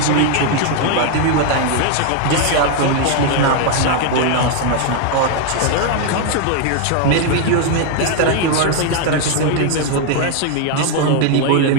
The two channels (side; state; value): both; different; correlation 0.00